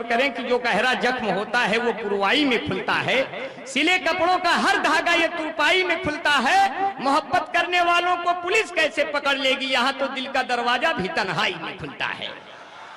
करें कि जो गहरा जख्म होता है वो पुरवाई में खुलता है, सिले कपड़ों का हर धागा ये तुरपाई में खुलता है। मोहब्बत करने वालों को पुलिस कैसे पकड़ लेगी, यहाँ तो दिल का दरवाजा भी तन्हाई में खुलता है।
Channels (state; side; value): identical; both; correlation 1.00